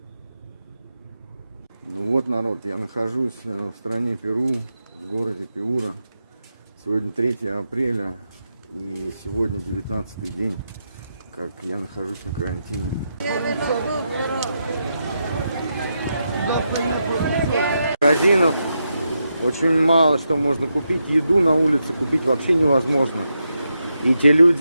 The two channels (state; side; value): inverted; both; correlation -0.85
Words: Ну вот, народ, я нахожусь в стране Перу, в городе Пиура. Сегодня 3 апреля и сегодня 19-й день, как я нахожусь на карантине. Магазинов очень мало что можно купить. Еду на улице купить вообще невозможно. И те